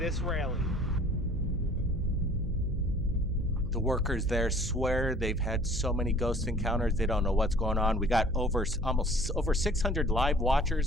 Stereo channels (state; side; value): noise; right; hum, 9 dB below the sound